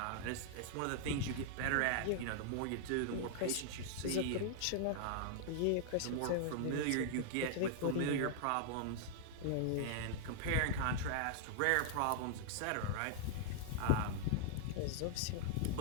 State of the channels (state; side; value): different; both; correlation -0.01